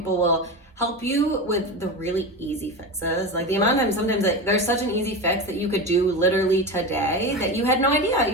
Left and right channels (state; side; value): normal; both; correlation 0.23